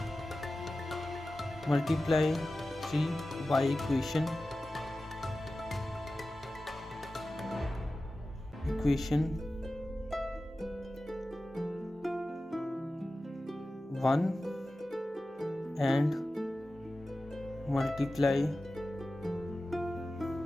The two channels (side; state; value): both; normal; correlation 0.95